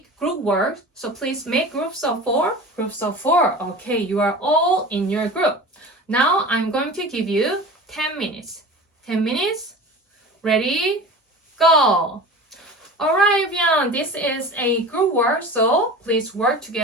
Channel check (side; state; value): both; normal; correlation 0.35